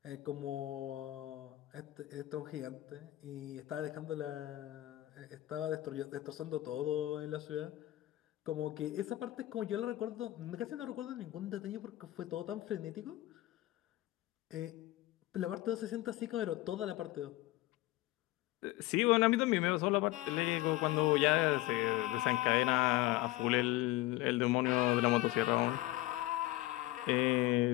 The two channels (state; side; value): quieter; right; 17.2 dB